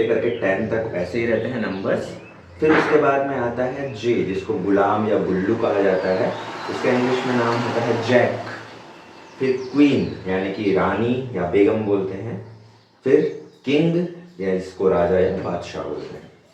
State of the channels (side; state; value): both; identical; correlation 1.00